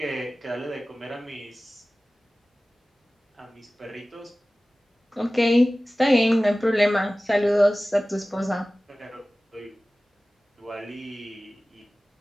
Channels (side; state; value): both; normal; correlation 0.97